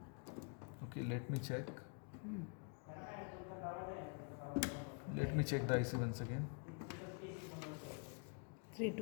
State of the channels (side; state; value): right; quieter; 39.4 dB